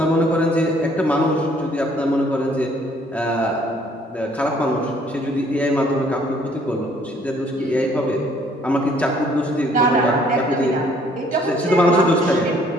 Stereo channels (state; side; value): normal; both; correlation 0.61